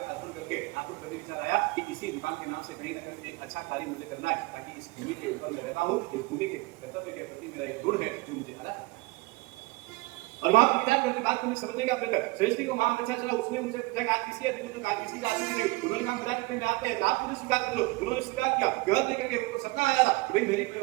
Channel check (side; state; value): left; quieter; 23.4 dB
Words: अर्पण करके आपको कभी विचार आया कि इसी दुकान के नाम से कहीं ना कहीं एक अच्छा कार्य मुझे करना है, ताकि इस भूमि के ऊपर मैं रहता हूँ, इस भूमि के कर्तव्य के प्रति मेरा एक गुण है जो मुझे अलग। और वहां पर विचार करने बात करने समझने का प्रयत्न, सृष्टि को वहां अच्छा चला, उसने मुझे पूछा कि आज किसी अधिक ने कहा किसी का आदमी नहीं, उन्होंने कहा विराट में आते हैं, आप मुझे स्वीकार कर लो। उन्होंने स्वीकार किया, घर लेकर के उनको सपना आया था कि भाई मेरी